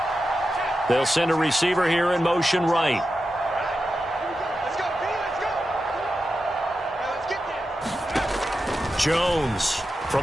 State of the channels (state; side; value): normal; both; correlation 0.90